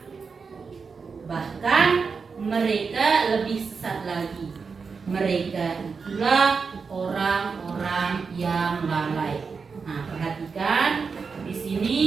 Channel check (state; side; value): quieter; left; 5.2 dB